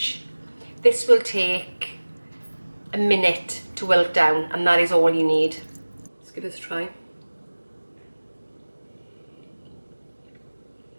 This will take a minute to wilt down, and that is all you need. Let's give this a try.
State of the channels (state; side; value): inverted; both; correlation -1.00